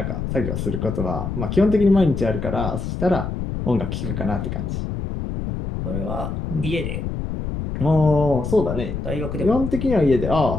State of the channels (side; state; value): left; noise; rumble, 4 dB below the sound